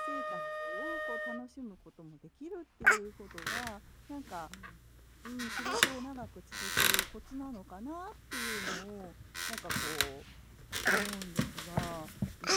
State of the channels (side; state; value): both; identical; correlation 1.00